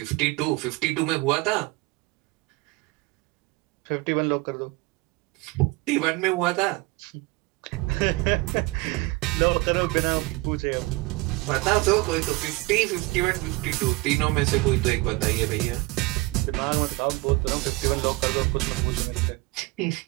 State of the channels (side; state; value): left; quieter; 22.6 dB